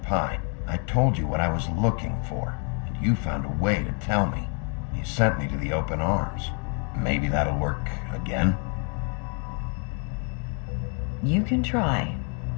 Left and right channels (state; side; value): quieter; right; 40.0 dB